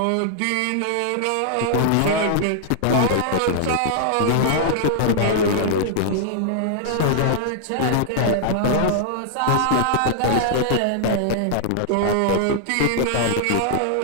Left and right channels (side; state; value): both; different; correlation -0.01